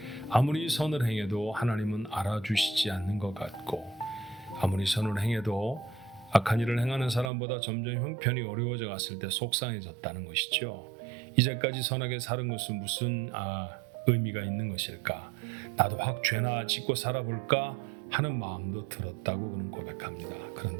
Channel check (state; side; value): drops out; left; at 7.3 s